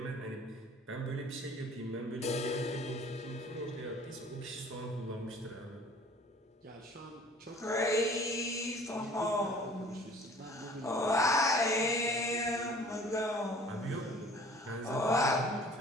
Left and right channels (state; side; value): normal; both; correlation 0.50